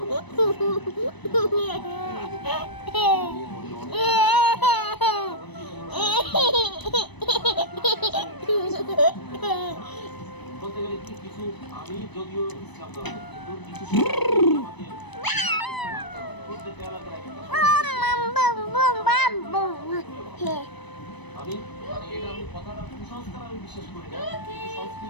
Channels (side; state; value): right; late; 1.0 ms